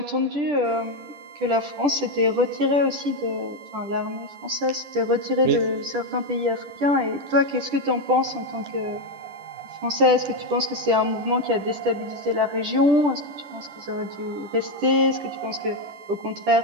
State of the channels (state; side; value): late; left; 10 ms